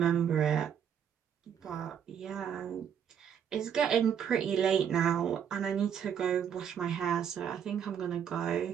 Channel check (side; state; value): left; quieter; 8.4 dB